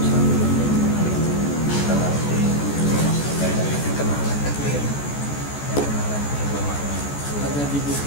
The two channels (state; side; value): late; right; 14 ms